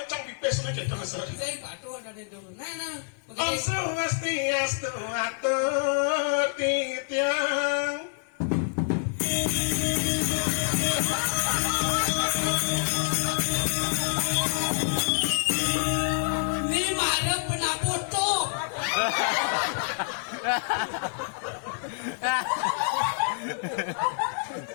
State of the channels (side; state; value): right; silent; 59 dB below the other